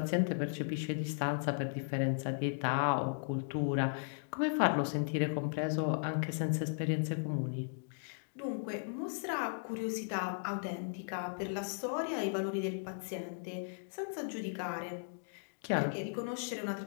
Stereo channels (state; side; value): silent; right; digital silence